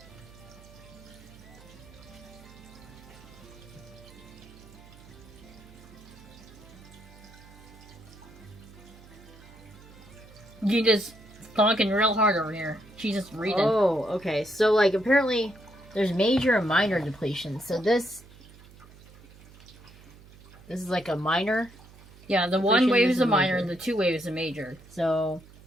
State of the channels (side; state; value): right; noise; hum, 21 dB below the sound